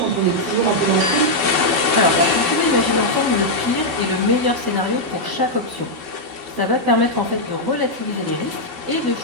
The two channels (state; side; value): late; left; 12 ms